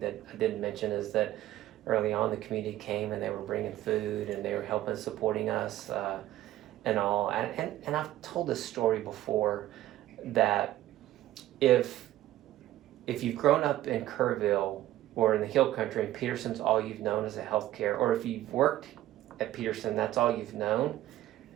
I didn't mention is that early on the community came and they were bringing food and they were helping, supporting us and all. And I've told this story before that if you've grown up in Kerrville or in the Hill Country and Peterson's all you've known as a healthcare, or if you've worked at Peterson, that's all you've known,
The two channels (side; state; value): left; quieter; 14.3 dB